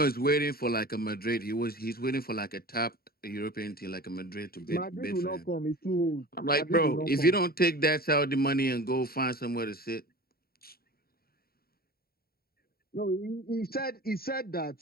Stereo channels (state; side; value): late; right; 0.44 ms